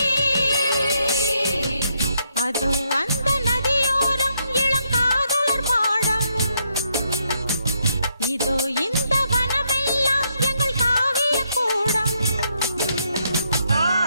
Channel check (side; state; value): both; inverted; correlation -0.76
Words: அதோ அந்த நதியோரம் இளம் காதலர் மாடம், இதோ இந்த வனமெல்லாம் எங்கள் காவிய கூடம்.